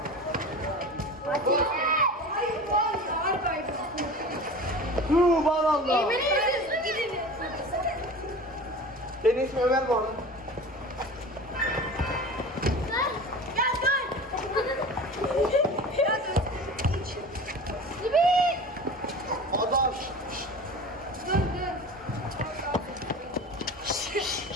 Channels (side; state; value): both; normal; correlation 0.35